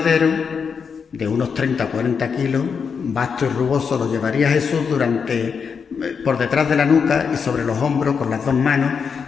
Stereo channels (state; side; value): quieter; right; 6.1 dB